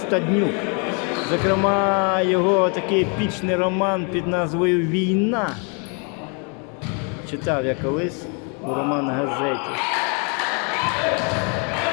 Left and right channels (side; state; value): right; quieter; 36.5 dB